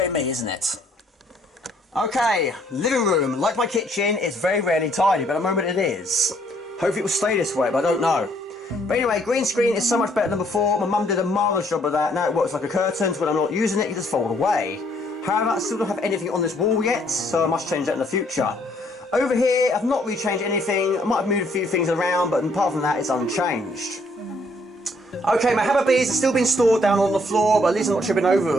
me, isn't it? Okay, living room. Like my kitchen, it's very rarely tidy, but at the moment it is. Hopefully it will stay this way, but I don't know. But anyway, green screen is so much better than before. My mum did a marvellous job of that. Now it works like a curtain, so when I'm not using it, it just fold away. However, I still don't have anything on this wall yet, so I must change that in the future. Over here, I've not really changed anything. I might have moved a few things around, but apart from that, it's unchanged. Okay, my hammer beads have still been stored down on the floor, but at least I'm not tripping over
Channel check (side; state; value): both; normal; correlation 0.66